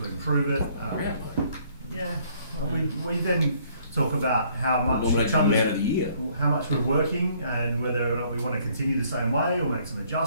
improve it. Yeah. Well, we then talk about how much Nominate the man of the year. how much we're working, and whether or not we want to continue the same way or make some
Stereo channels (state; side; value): inverted; both; correlation -0.63